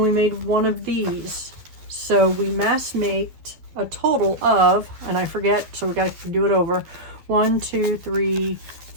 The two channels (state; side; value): late; left; 12 ms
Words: made one of these. So we mass maked a total of, and I forget, so we got to do it over. 1, 2, 3,